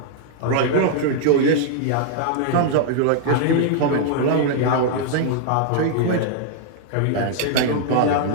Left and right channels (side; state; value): both; different; correlation -0.01